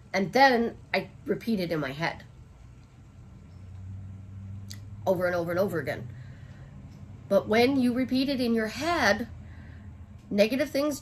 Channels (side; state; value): both; identical; correlation 1.00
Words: and then I repeat it in my head. Over and over and over again. But when you repeat it in your head, negative things